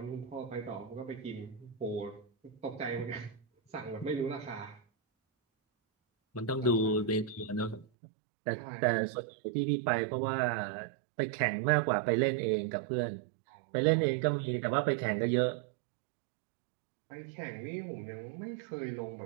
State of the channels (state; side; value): drops out; left; at 7.9 s